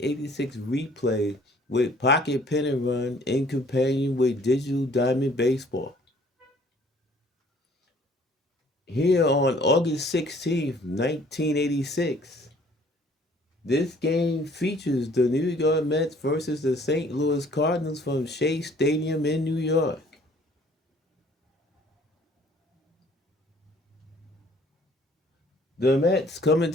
replay with Pocket Pennant Run in companion with Digital Diamond Baseball. Here on August 16th, 1986, this game features the New York Mets versus the St. Louis Cardinals from Shea Stadium in New York. The Mets come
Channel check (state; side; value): normal; both; correlation 0.57